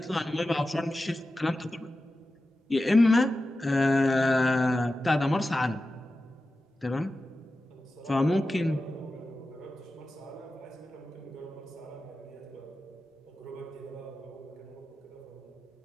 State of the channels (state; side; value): normal; both; correlation 0.93